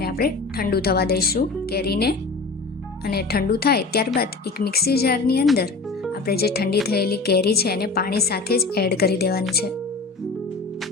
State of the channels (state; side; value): quieter; right; 3.9 dB